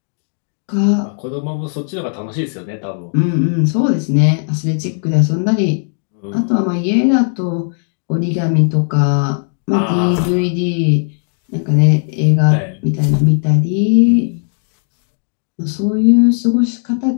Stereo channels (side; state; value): right; silent; 69 dB below the other